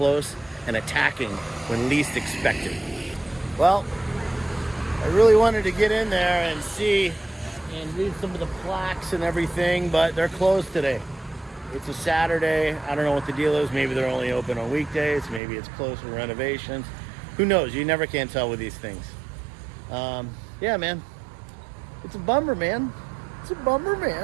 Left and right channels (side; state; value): left; drops out; at 15.4 s